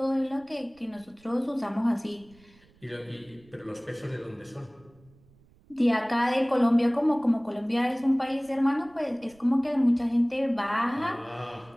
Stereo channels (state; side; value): noise; right; rumble, 29 dB below the sound